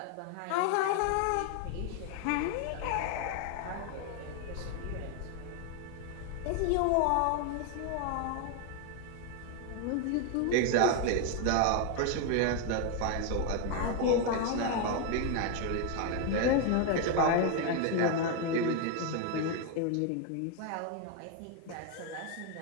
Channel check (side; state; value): both; different; correlation 0.01